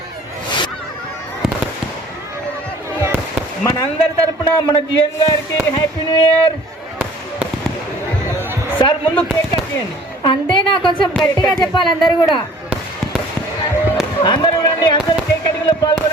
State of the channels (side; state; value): both; normal; correlation 0.51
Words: మనందరి తరపున మన జిఎన్ గారికి హ్యాపీ న్యూ ఇయర్. సార్ ముందు కేక్ కట్ చేయండి. అంతేనా, కొంచెం గట్టిగా చెప్పాలి. అందరూ కూడా అందరూ రండి, అందరూ కేక్ కటింగ్ లో